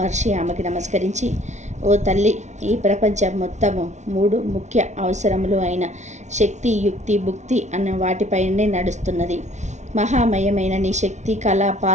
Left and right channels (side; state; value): left; late; 0.33 ms